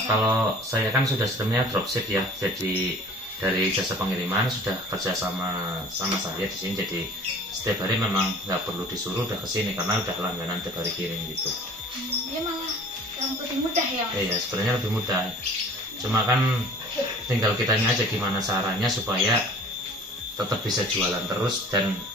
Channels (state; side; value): normal; both; correlation 0.46